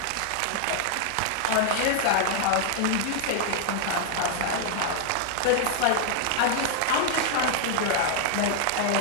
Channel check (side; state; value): both; different; correlation -0.01